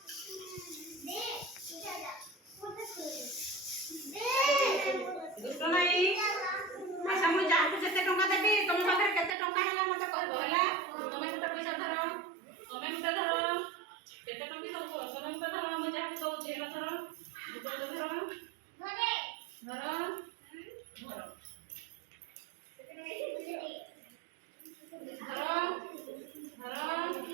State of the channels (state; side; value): drops out; left; at 9.3 s